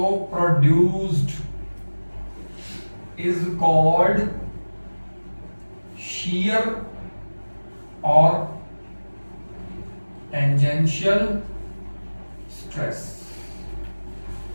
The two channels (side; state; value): both; inverted; correlation -1.00